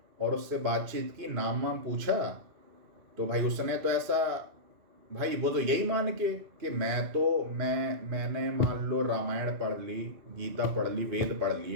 और उससे बातचीत की, नाम वाम पूछा, तो भाई उसने तो ऐसा, भाई वो तो यही मान के कि मैंने मान लो रामायण पढ़ ली, गीता पढ़ ली, वेद पढ़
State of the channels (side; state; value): left; late; 2.6 ms